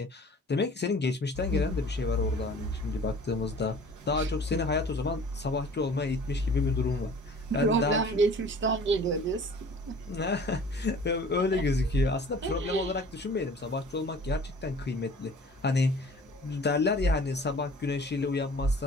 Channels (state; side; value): normal; both; correlation 0.47